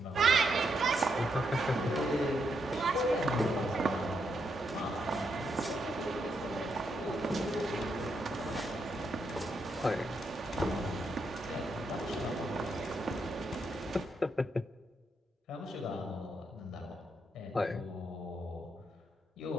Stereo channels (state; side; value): normal; both; correlation 0.80